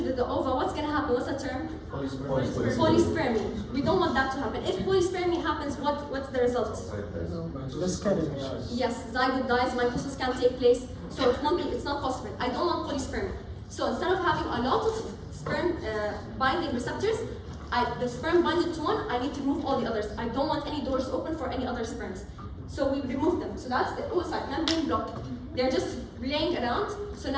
the ova, what's going to happen? What's the term? Polyspermy. We don't want that to happen. If polyspermy happens, what's the result? Yes, zygote dies, mitosis can't take place, so it's not possible. I don't want polyspermy. So instead of having a lot of sperm binding receptors, the sperm binded to one, I need to remove all the others. I don't want any doors open for any other sperms. So we remove them. So that's the oocyte membrane block. They're just laying around. So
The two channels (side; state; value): both; identical; correlation 1.00